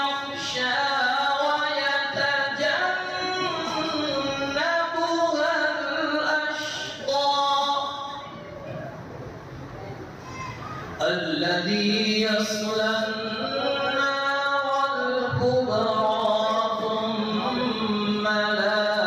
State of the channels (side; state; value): both; identical; correlation 1.00